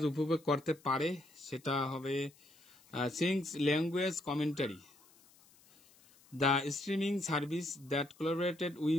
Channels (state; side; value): noise; left; hiss, 28 dB below the sound